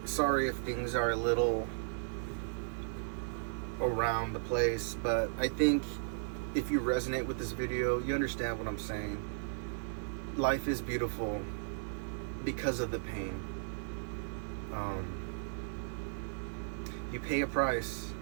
Sorry if things are a little around the place, but I think if you resonate with this video, you understand what I'm saying. Life is beautiful because of the pain. You pay a price,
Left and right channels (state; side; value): silent; left; 54 dB below the other